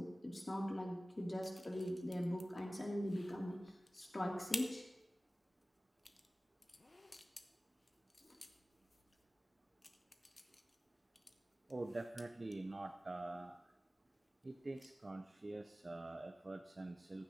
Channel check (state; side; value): normal; both; correlation 0.97